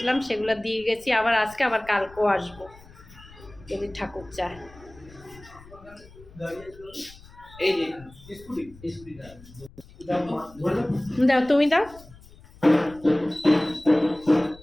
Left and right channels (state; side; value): noise; left; rumble, 22 dB below the sound